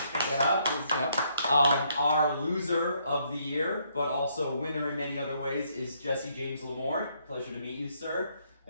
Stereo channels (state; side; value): inverted; both; correlation -0.71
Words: Yeah. Our loser of the year, but also winner in many other ways, is Jesse James Lamore. Pleasure to meet you, sir.